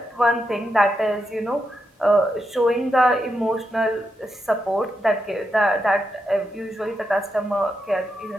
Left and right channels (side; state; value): both; normal; correlation 0.85